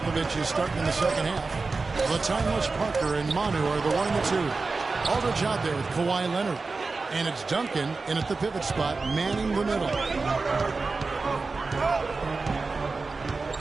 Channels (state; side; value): quieter; left; 4.0 dB